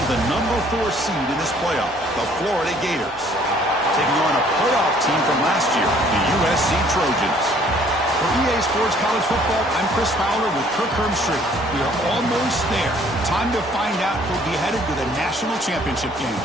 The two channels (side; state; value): both; normal; correlation 0.59